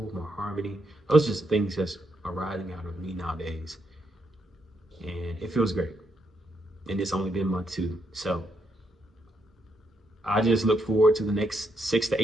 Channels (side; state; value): both; normal; correlation 0.78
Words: more harmony. Those are just things that's arising out of me nowadays. And it feels great. And it's only been month 2. So I just look forward to the next 6 to